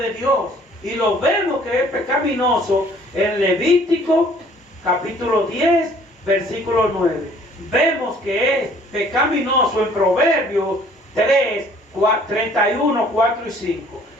Dios. Y lo vemos que es pecaminoso en Levítico capítulo 10 versículo 9. Vemos que es pecaminoso en Proverbios 3, 31, 4 y 5.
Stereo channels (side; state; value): both; normal; correlation 0.56